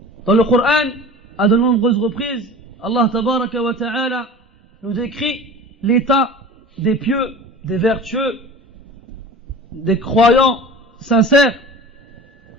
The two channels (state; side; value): normal; both; correlation 0.38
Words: Dans le Coran, à de nombreuses reprises, Allah tabaraka wa ta'ala nous décrit l'état des pieux, des vertueux, des croyants sincères